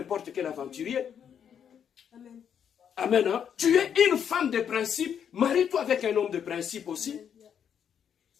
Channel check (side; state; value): right; quieter; 8.3 dB